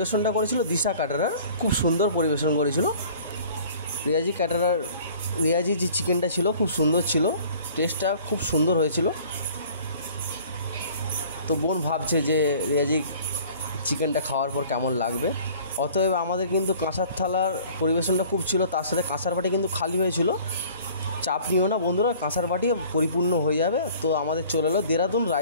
করেছিল দিশা ক্যাটারার, খুব সুন্দর পরিবেশন করেছিল। রেয়াজি যে চিকেনটা ছিল খুব সুন্দর ছিল, টেস্টটা খুব সুন্দর হয়েছিল। তো বোন ভাবছে যে রেয়াজি চিকেনটা খাওয়ার পর কেমন লাগবে। অতএব আমাদের কিন্তু কাঁসার থালার পরিবেশনটা খুব ছিল, তার সাথে কাঁসার বাটি কিন্তু খালি হয়েছিল। চাপ নিও না বন্ধুরা, কাঁসার বাটি পরিপূর্ণ হয়ে যাবে। তো আমাদের চলে এলো দেরাদুন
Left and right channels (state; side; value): inverted; both; correlation -0.50